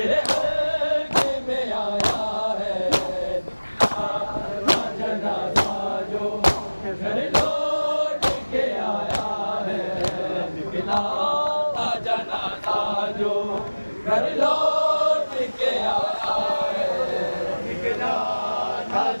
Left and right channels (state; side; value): inverted; both; correlation -1.00